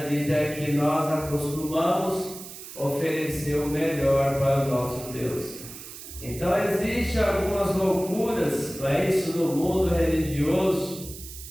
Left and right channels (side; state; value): right; noise; hiss, 13 dB below the sound